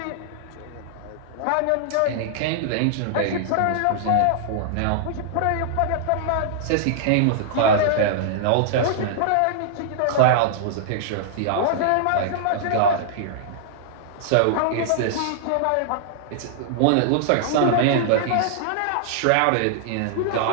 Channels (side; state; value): both; different; correlation -0.01